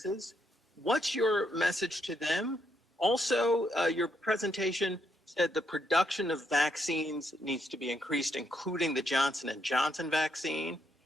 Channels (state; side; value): normal; both; correlation 0.77